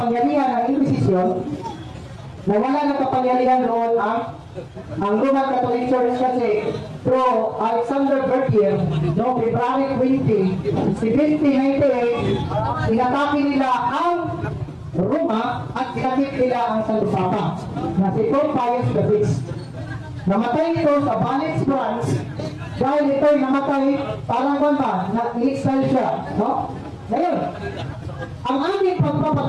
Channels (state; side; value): identical; both; correlation 1.00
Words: ng Inquisition, nawala na kapangyarihan noon ang Roman Catholic Church kasi Pro Alexander Bertier noong February 20, 1798, inatake nila ang Roma at kinakip nila ang Santo Papa na si Pope Pius VI. Namatay ito sa Valais, France dahil ito'y namatay parang ba na i-exile siya, no? Ngayon, ang aming